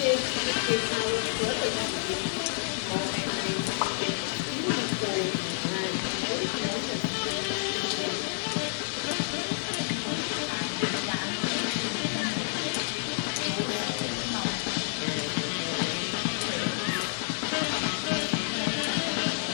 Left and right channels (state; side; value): silent; right; digital silence